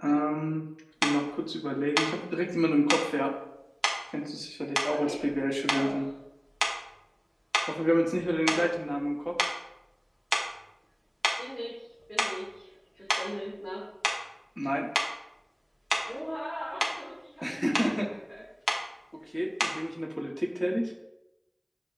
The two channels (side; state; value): both; identical; correlation 1.00